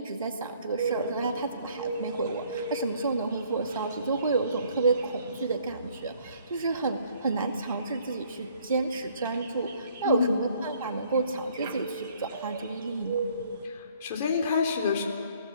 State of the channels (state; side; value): inverted; both; correlation -0.61